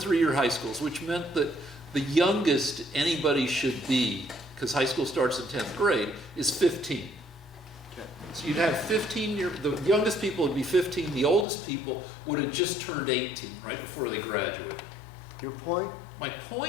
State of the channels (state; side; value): drops out; right; at 11.5 s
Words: high schools, which meant that the youngest anybody should be, because high school starts in 10th grade, is 15. Okay. So you'd have 15, the youngest people would be 15, the oldest people would have just turned 18 right before they graduated. Your point? My